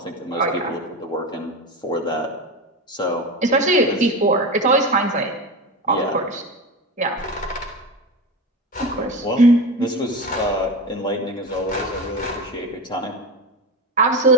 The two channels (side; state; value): both; normal; correlation 0.23